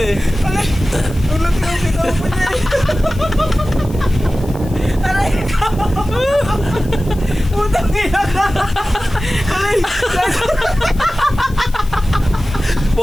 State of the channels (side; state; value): left; noise; hiss, 22 dB below the sound